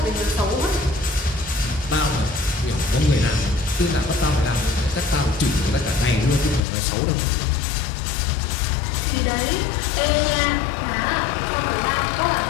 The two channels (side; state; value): right; drops out; at 6.6 s